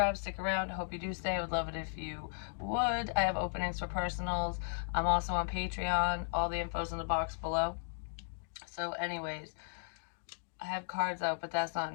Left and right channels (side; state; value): right; silent; digital silence